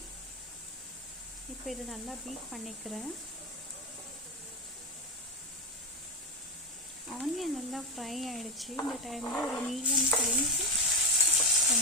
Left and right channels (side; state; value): both; normal; correlation 0.11